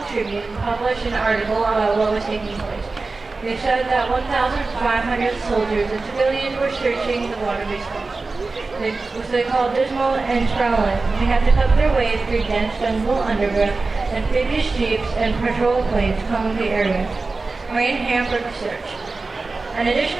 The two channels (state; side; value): quieter; left; 3.7 dB